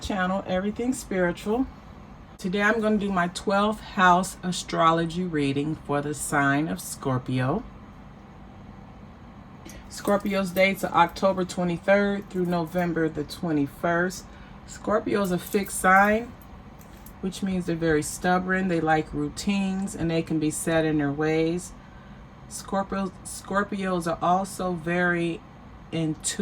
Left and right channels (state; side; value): identical; both; correlation 1.00